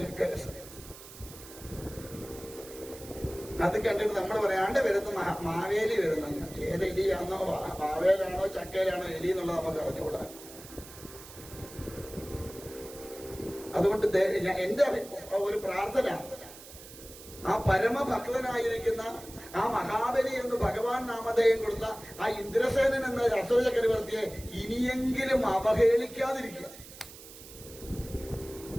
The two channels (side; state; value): right; noise; hiss, 17 dB below the sound